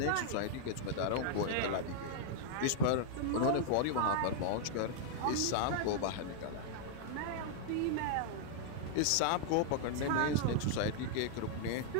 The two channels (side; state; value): both; different; correlation -0.01